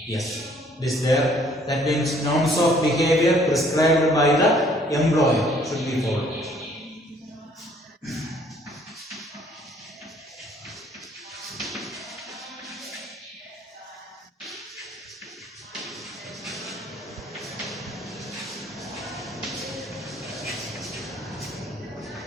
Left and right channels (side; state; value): both; normal; correlation 0.60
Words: Yes, it is there. That means norms of behavior prescribed by the employer should be followed.